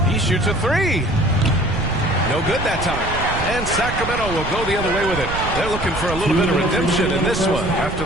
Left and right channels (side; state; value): right; noise; rumble, 7 dB below the sound